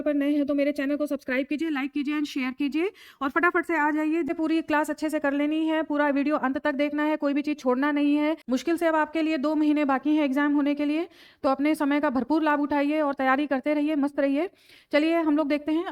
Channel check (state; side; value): identical; both; correlation 1.00